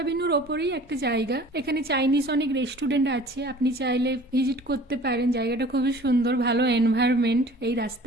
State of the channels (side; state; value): both; normal; correlation 0.47